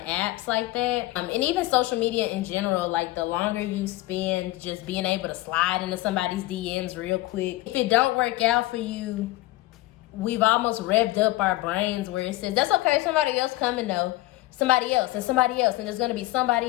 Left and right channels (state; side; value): quieter; right; 18.0 dB